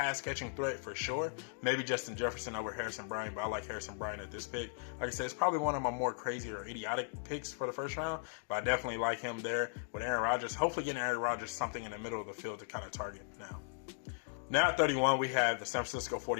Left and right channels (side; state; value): right; silent; digital silence